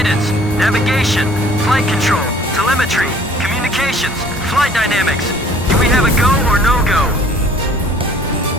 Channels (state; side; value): normal; both; correlation 0.54